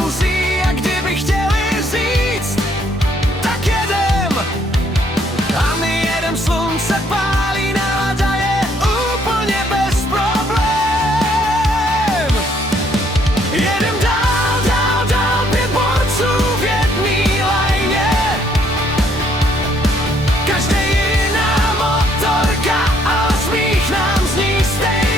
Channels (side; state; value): both; normal; correlation 0.67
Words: a kdyby chtěli říct, tak jedem. A my jedem, slunce pálí, nálada je úplně bez problém. Jedem dál, dál, dál, 5 borců v jedný lajně. Každý jiná motorka, ale smích nám zní